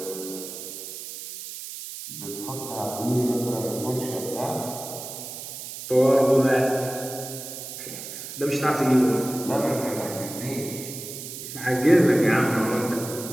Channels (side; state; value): right; noise; hiss, 10 dB below the sound